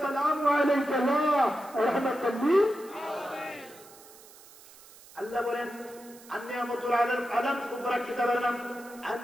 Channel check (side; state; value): right; noise; hiss, 22 dB below the sound